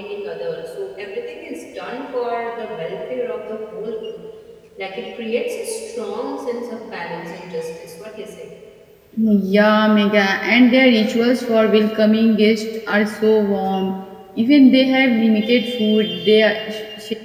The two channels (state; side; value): identical; both; correlation 1.00